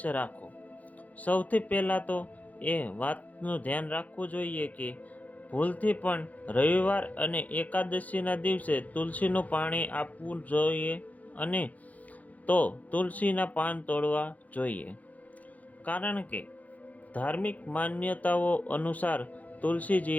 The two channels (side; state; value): right; late; 0.076 ms